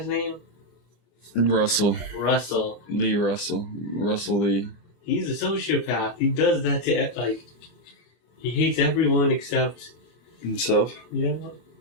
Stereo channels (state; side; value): late; right; 25 ms